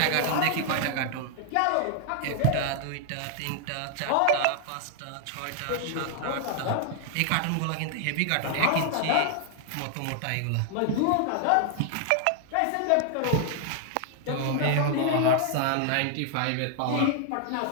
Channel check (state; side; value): different; both; correlation 0.00